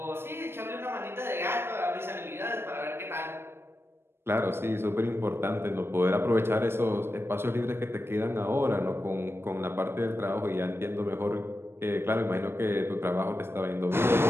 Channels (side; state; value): left; late; 0.12 ms